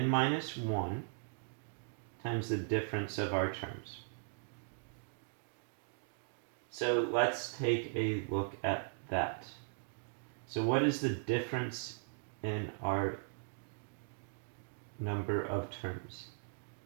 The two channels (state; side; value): silent; left; digital silence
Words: minus 1 times the difference of our terms. So let's take a look at that. So what is the difference in our number of terms?